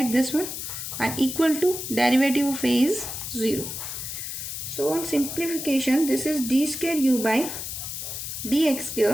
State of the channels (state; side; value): noise; left; hiss, 6 dB below the sound